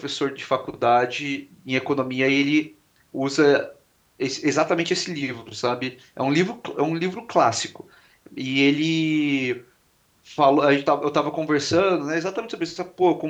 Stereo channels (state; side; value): identical; both; correlation 1.00